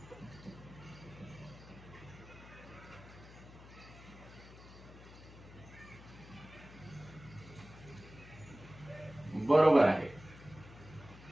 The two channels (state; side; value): noise; left; hum, 18 dB below the sound